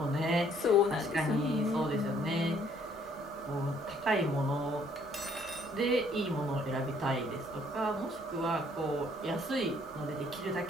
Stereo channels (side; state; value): both; normal; correlation 0.63